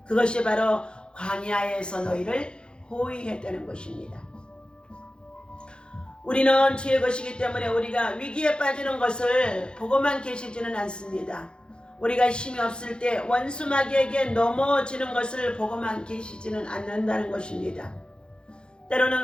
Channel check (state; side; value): late; right; 0.051 ms